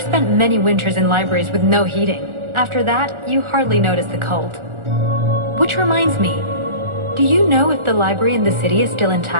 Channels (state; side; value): late; left; 1.4 ms